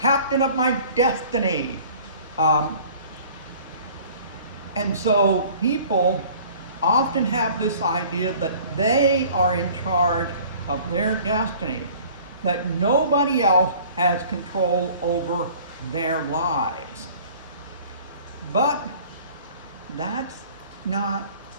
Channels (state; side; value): inverted; both; correlation -0.49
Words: of my destiny. And so people often have this idea that they are in charge of their destiny, that nobody else has control over their lives. But that's not